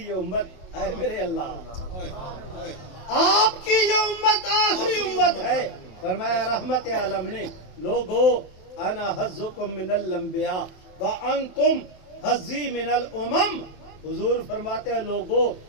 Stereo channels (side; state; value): right; late; 27 ms